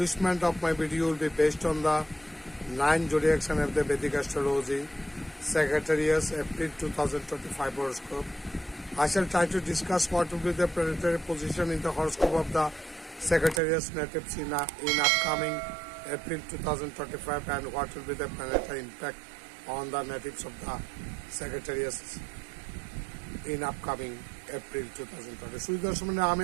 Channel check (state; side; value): drops out; left; at 13.6 s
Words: of my video will be based on the 9 zodiac sign of the Vedic astrology, Sagittarius, April 2025 horoscope. I shall try to discuss what will be the planetary position in the horoscope of the Sagittarius natives in upcoming April 2025 and what will be the planetary impact on the natives of the Sagittarius in upcoming April 2020. সুদর্শনে